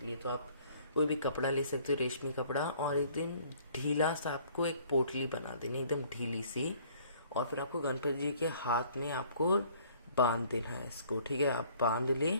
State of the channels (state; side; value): inverted; both; correlation -0.57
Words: लिए। तो आप कोई भी कपड़ा ले सकते हो, रेशमी कपड़ा, और एकदम ढीला सा आपको एक पोटली बना देनी, एकदम ढीली सी। और फिर आपको गणपति जी के हाथ में आपको बांध देना है इसको। ठीक है, आप बांध ले।